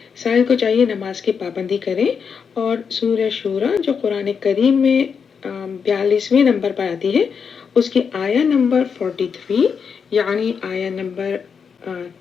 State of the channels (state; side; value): quieter; right; 6.3 dB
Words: سائل کو چاہیے نماز کی پابندی کریں اور سورہ شورا جو قرآن کریم میں 42ویں نمبر پر آتی ہے، اس کی آیا نمبر 43 یعنی آیا نمبر